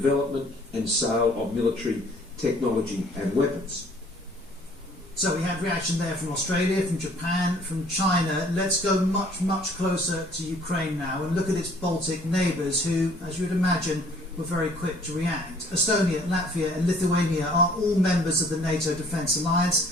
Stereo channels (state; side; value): normal; both; correlation 0.56